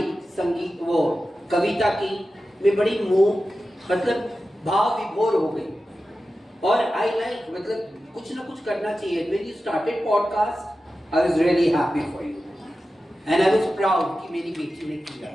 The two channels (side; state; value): both; normal; correlation 0.93